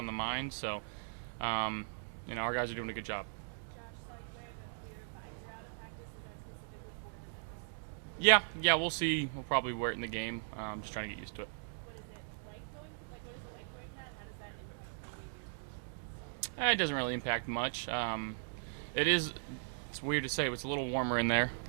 the mind. So, our guys are doing a good job. Josh, saw you wearing a clear visor out of practice. Is that specifically for the nose? Yeah, we'll see. We'll probably wear it in the game. Just trying to get used to it. What is it like going? Like, what is it like wearing that? How does that impact any of your positions? It doesn't really impact much. It's weird to say, but it's a little warmer in there.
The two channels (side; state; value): left; silent; digital silence